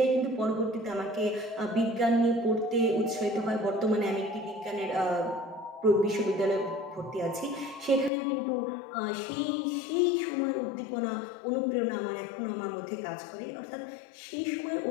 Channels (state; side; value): drops out; right; at 8.1 s